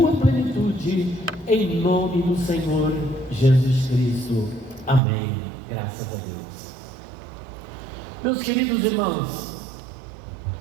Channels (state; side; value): drops out; left; at 5.0 s